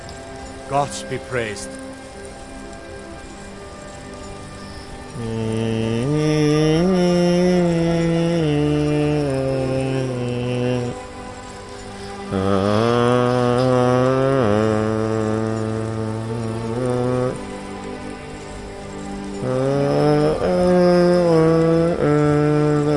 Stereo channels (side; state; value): both; identical; correlation 1.00